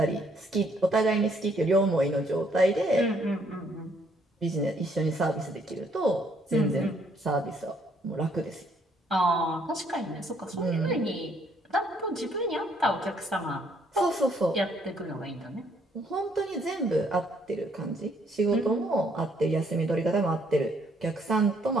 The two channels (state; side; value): normal; both; correlation 0.67